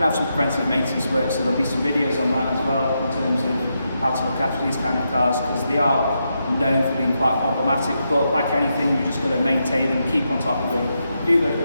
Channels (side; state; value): both; inverted; correlation -0.84